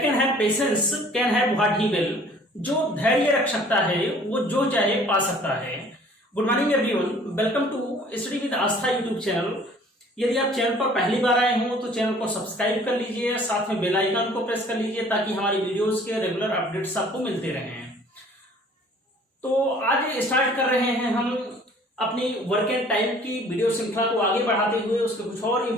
can have patience can have what he will. जो धैर्य रख सकता है वो जो चाहे पा सकता है। Good morning everyone, welcome to study with Aastha YouTube channel. यदि आप चैनल पर पहली बार आए हो तो चैनल को सब्सक्राइब कर लीजिए, साथ में बेल आइकन को प्रेस कर लीजिए ताकि हमारी वीडियोस के रेगुलर अपडेट्स आपको मिलते रहें। तो आज स्टार्ट कर रहे हैं हम अपनी वर्क एंड टाइम की वीडियो श्रृंखला को आगे बढ़ाते हुए उसके कुछ और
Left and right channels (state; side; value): normal; both; correlation 0.53